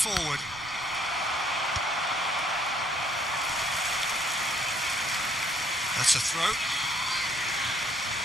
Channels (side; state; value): both; normal; correlation 0.65